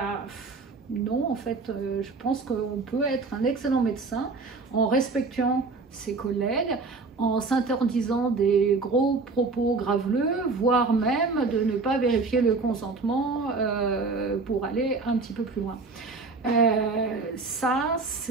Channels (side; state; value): left; quieter; 4.0 dB